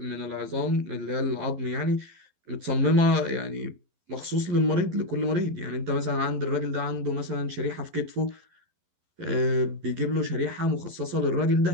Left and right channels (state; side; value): late; left; 11 ms